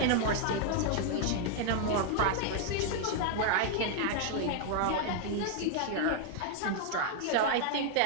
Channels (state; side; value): different; both; correlation 0.00